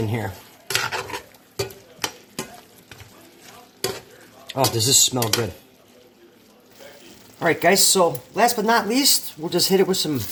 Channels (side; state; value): both; identical; correlation 1.00